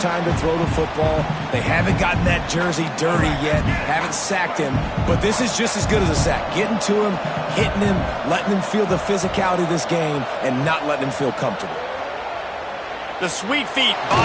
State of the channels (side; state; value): both; identical; correlation 1.00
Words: to throw the football. They haven't gotten that jersey dirty yet, haven't sacked him. But this is just as good as a sack. Getting to him, hitting him, letting him feel the physicality of this game, and not letting him feel comfortable. The sweet feet